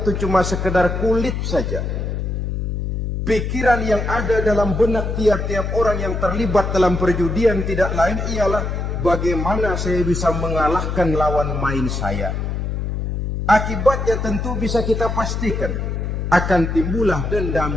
cuma sekedar kulit saja. Pikiran yang ada dalam benak tiap-tiap orang yang terlibat dalam perjudian tidak lain ialah bagaimana saya bisa mengalahkan lawan main saya. Akibatnya tentu bisa kita pastikan akan timbullah dendam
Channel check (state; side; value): noise; left; hum, 2 dB below the sound